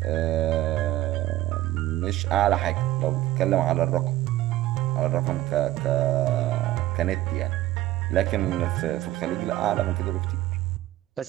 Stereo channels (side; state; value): left; quieter; 15.3 dB